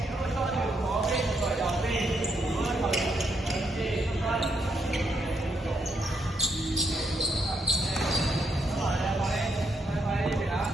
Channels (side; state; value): both; normal; correlation 0.76